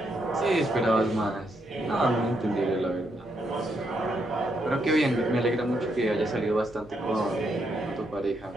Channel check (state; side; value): normal; both; correlation 0.78